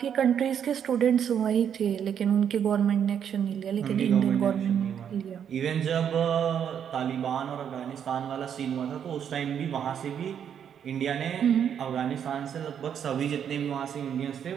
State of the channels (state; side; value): quieter; left; 8.5 dB